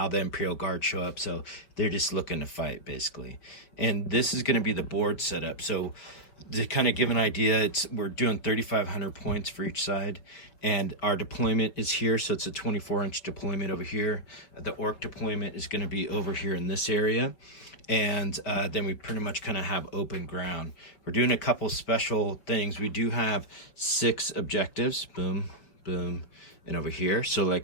the Imperial Guard show up, so they're just looking to fight basically. And this is going to be the board setup. So to kind of give an idea, we're doing 3,500 points for each side, and our deployment is here, so it's a 24-inch deployment over here. The Ork deployment is going to be over here in this area, and then we pretty much kind of have open ground. We're doing a couple special things. We do have 6 objectives, boom, boom, and over here. So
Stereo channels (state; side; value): late; right; 5.4 ms